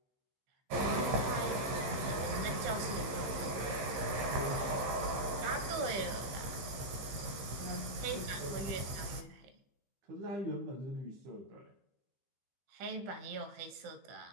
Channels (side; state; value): left; late; 15 ms